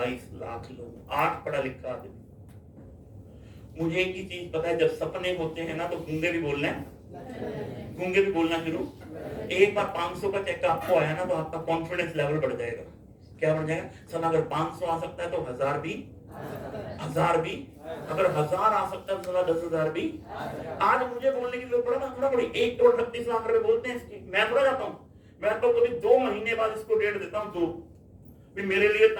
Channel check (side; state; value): both; identical; correlation 1.00